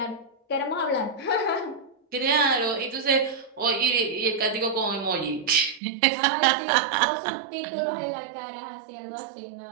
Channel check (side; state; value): left; drops out; at 5.8 s